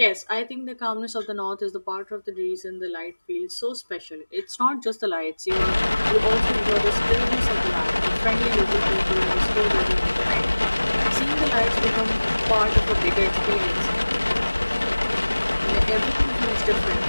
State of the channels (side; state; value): both; inverted; correlation -1.00